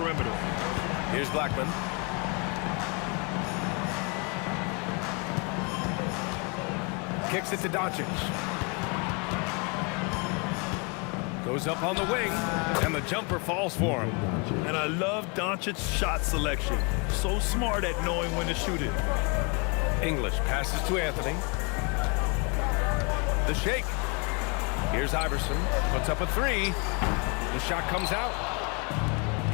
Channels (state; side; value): quieter; right; 32.8 dB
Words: Here's Blackman. Kicks it to Doncic. Goes up on the wing, and the jumper falls for him. And I love Doncic's shot selection. So smart at knowing when to shoot it. English passes to Anthony. The shake. Here's Iverson. Puts up a 3. The shot comes out.